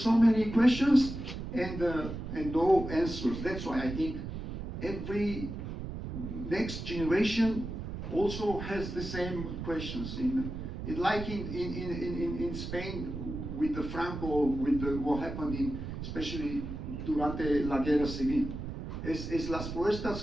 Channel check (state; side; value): noise; right; rumble, 7 dB below the sound